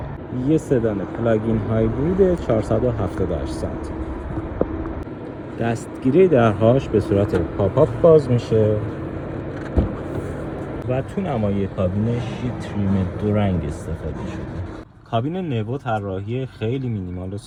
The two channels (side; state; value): both; identical; correlation 1.00